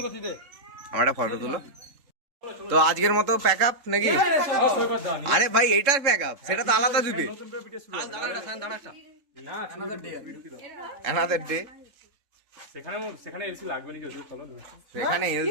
আমার একটা ফটো তুলো। তো আজকের মতো প্যাক আপ নাকি? আরে ভাই এইটার প্যাক আপ, সেটা তো আলাদা দিবে। না অ্যানাদার ডে। সেখানে এসি লাগবে না, যদি চলো। সেখানে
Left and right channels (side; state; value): left; late; 3.6 ms